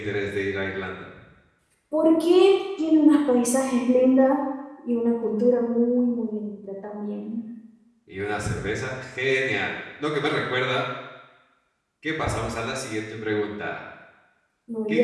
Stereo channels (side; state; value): both; identical; correlation 1.00